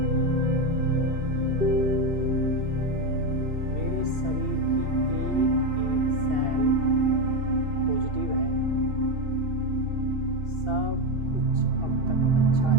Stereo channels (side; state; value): left; late; 2.7 ms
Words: मेरे शरीर की एक एक सेल पॉजिटिव है। सब कुछ अब तक अच्छा